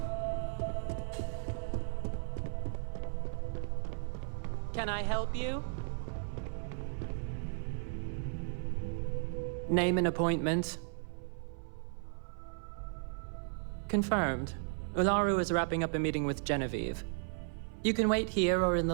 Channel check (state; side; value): silent; left; 54 dB below the other